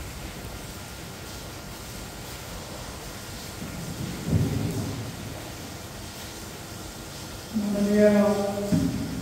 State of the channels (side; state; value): both; identical; correlation 1.00